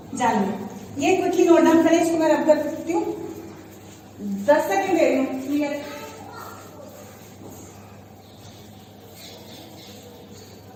जान लें। ये क्विकली नोट डाउन करें, इसको मैं रब कर सकती हूँ, 10 सेकेंड दे रही हूँ, क्लियर।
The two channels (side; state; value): both; identical; correlation 1.00